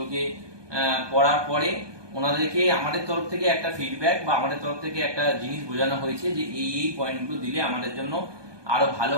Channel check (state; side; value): late; left; 1.2 ms